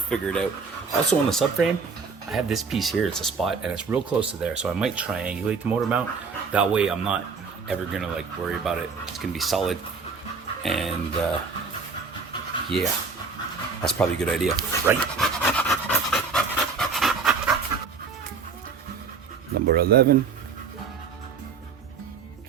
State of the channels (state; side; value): quieter; left; 5.1 dB